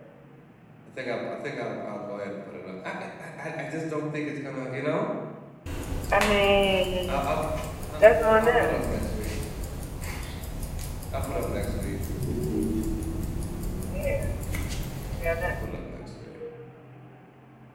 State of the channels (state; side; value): identical; both; correlation 1.00